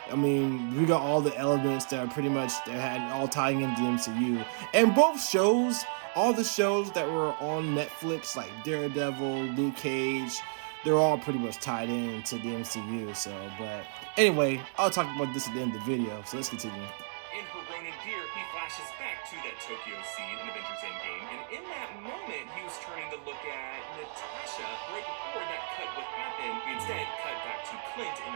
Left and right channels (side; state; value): left; silent; digital silence